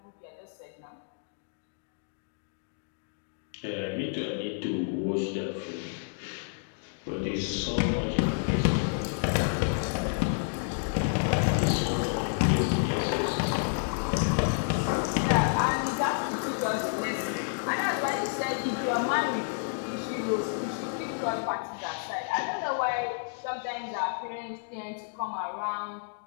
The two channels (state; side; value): silent; right; digital silence